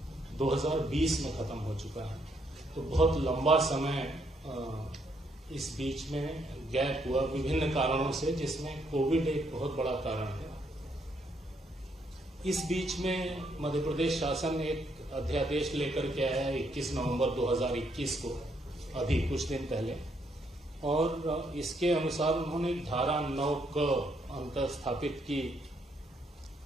2020 में खत्म हो चुका है। तो बहुत लंबा समय इस बीच में गैप हुआ विभिन्न कारणों से, जिसमें कोविड एक बहुत बड़ा कारण है। इस बीच में मध्य प्रदेश शासन एक अध्यादेश लेकर के आया है 21 नवंबर 2021 को, अभी कुछ दिन पहले, और इसके अनुसार उन्होंने धारा 9 क अंतर स्थापित की,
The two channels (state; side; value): normal; both; correlation 0.73